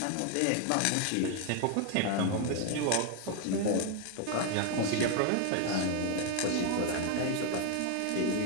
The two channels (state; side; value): different; both; correlation 0.01